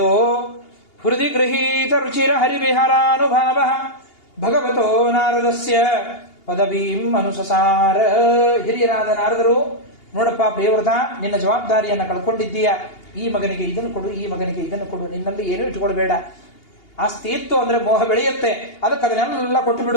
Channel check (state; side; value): late; right; 2.8 ms